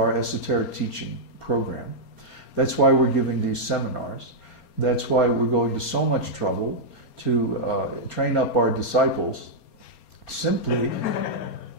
esoteric teaching program. That's why we're giving these seminars. That's why we're going to so much trouble to train up our disciples. Simply,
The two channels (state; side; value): late; right; 4.3 ms